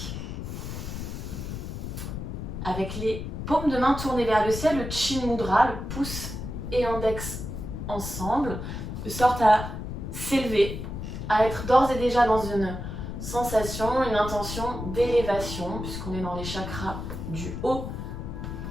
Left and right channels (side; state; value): left; noise; rumble, 6 dB below the sound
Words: Avec les paumes de main tournées vers le ciel, le Chin Mudra, le pouce et index ensemble, de sorte à s'élever, à être d'ores et déjà dans une sensation, une intention d'élévation, puisqu'on est dans les chakras du haut.